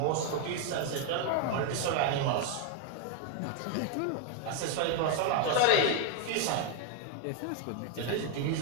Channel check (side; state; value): both; different; correlation 0.01